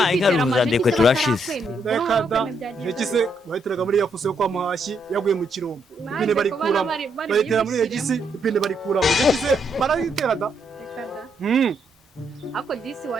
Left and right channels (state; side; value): normal; both; correlation 0.76